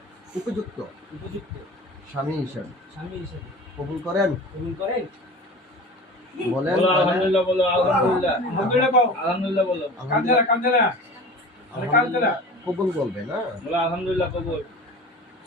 উপযুক্ত স্বামী হিসাবে কবুল করেন? বলেন। আলহামদুলিল্লাহ বলো। আলহামদুলিল্লাহ। আলহামদুলিল্লাহ বলো। কবুল বলবে না? বলো আলহামদুলিল্লাহ কবুল।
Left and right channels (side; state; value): both; normal; correlation 0.37